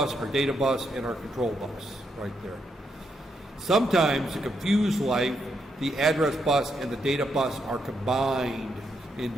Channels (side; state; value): both; normal; correlation 0.79